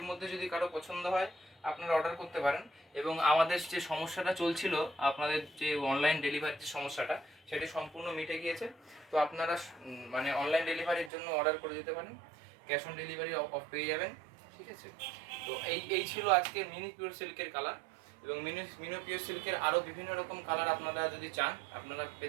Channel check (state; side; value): drops out; left; at 11.1 s